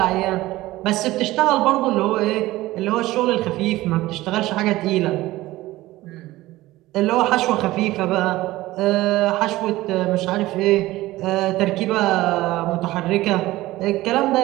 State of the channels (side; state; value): left; quieter; 17.5 dB